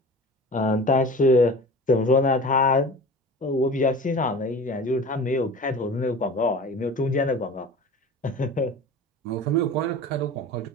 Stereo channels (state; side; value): normal; both; correlation 0.38